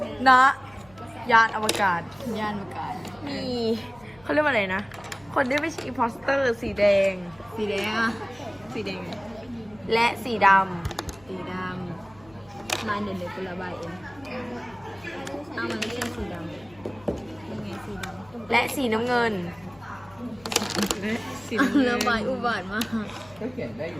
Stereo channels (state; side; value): noise; left; hum, 26 dB below the sound